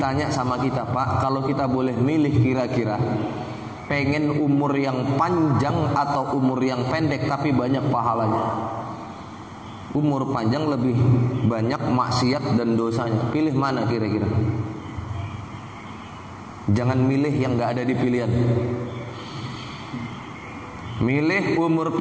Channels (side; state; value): both; identical; correlation 1.00